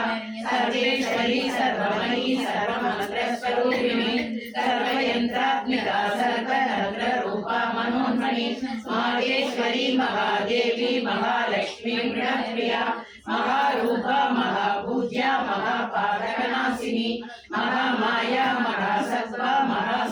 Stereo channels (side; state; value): both; identical; correlation 1.00